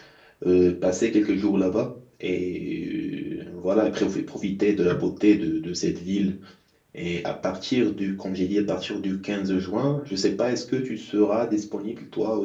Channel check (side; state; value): both; identical; correlation 1.00